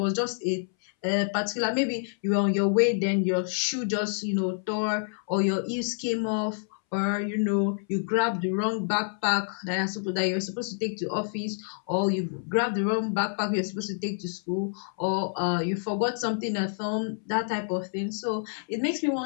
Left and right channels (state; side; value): silent; right; 60 dB below the other